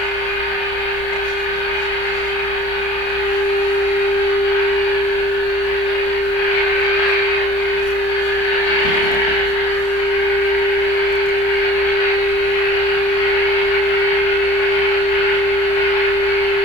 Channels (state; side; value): late; right; 30 ms